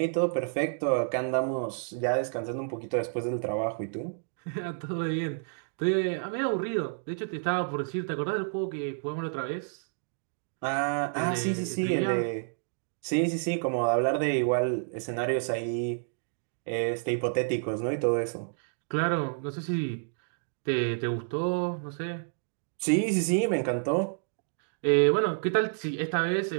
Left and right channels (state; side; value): silent; left; digital silence